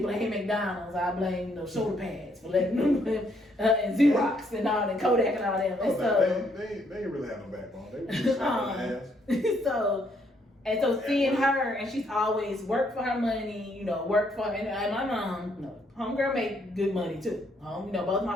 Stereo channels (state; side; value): normal; both; correlation 0.71